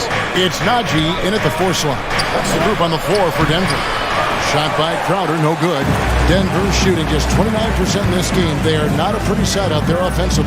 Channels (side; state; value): both; identical; correlation 1.00